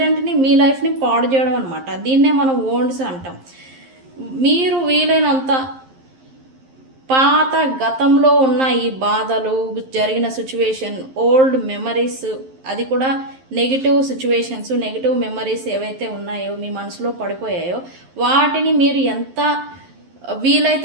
మీ లైఫ్ని పాడు చేయడం అనమాట. దీన్నే మనం ఓండ్స్ అంటాం. మీరు వీలైనంత పాత గతంలో ఉన్న ఈ బాధలు, జరిగిన సిచ్యువేషన్, ఓల్డ్ మెమరీస్, అది కూడా నెగిటివ్ సిచ్యువేషన్స్, నెగిటివ్ మెమరీస్ ఏవైతే ఉన్నాయో మీ మనసులో పడిపోయాయో వాటిని మీరు ఎంత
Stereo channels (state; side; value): late; left; 11 ms